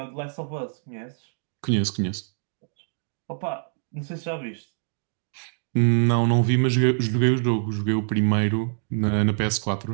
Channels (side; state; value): left; silent; digital silence